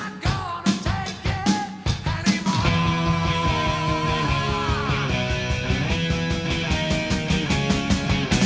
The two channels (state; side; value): identical; both; correlation 1.00